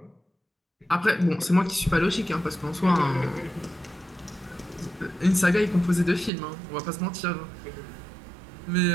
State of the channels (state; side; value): drops out; left; at 6.3 s